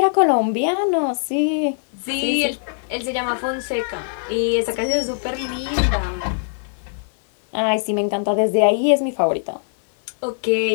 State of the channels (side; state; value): right; silent; 65 dB below the other